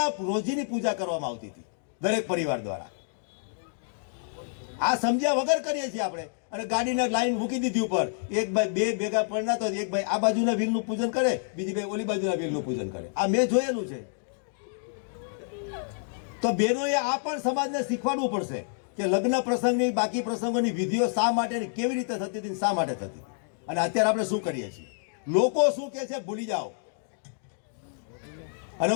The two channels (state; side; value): silent; right; digital silence